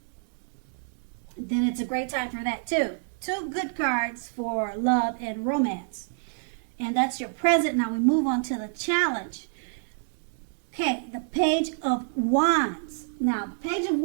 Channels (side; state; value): left; silent; digital silence